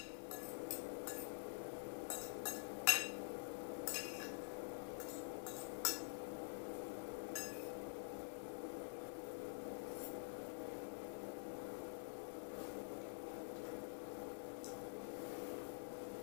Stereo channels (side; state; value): right; silent; digital silence